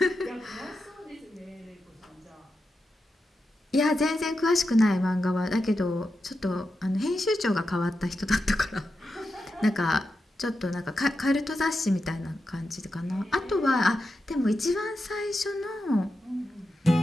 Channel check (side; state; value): both; normal; correlation 0.88